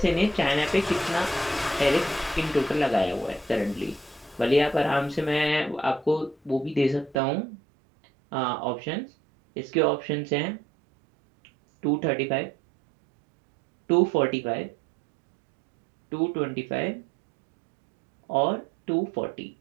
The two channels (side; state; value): left; drops out; at 7.2 s